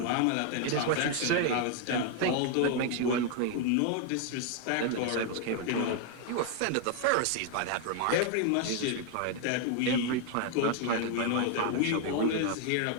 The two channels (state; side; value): different; both; correlation 0.00